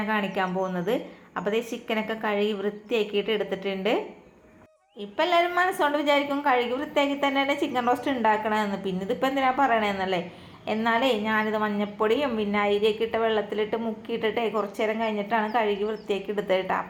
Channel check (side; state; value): both; identical; correlation 1.00